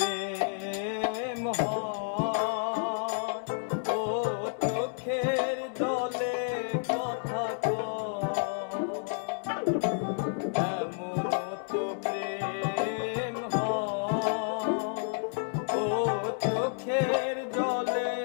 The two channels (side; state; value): right; silent; digital silence